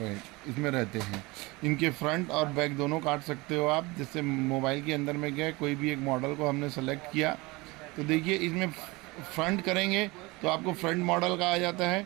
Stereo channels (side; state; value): left; quieter; 23.6 dB